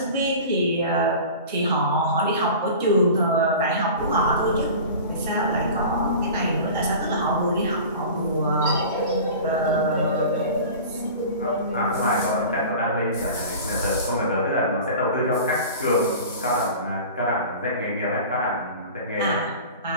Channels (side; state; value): both; inverted; correlation -0.37